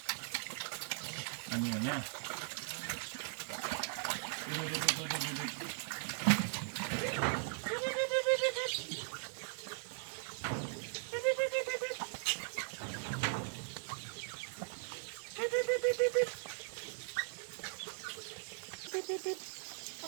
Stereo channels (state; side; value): silent; left; 52 dB below the other